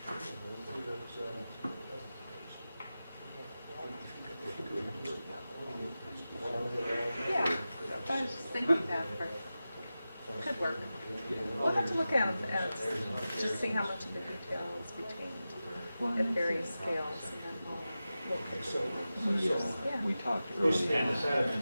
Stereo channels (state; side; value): inverted; both; correlation -0.94